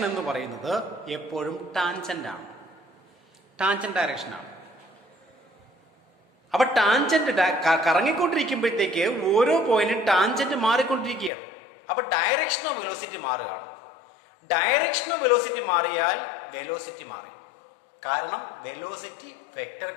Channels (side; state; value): right; drops out; at 11.3 s